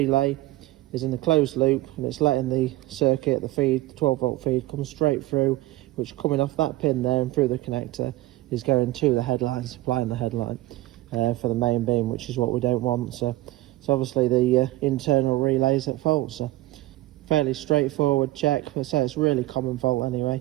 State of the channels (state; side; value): quieter; left; 18.0 dB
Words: is in the closed loop and it's letting the circuit, the feed, the 12 volt feed, come straight through, which coming off that pin there and through the connector is going to the headlight, supplying the headlight for the main beam, which is what we don't want. So obviously the internal relay's at fault. So fairly straightforward check. I say it's a really common fault